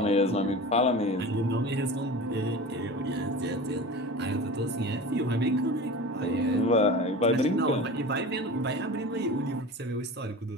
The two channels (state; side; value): normal; both; correlation 0.33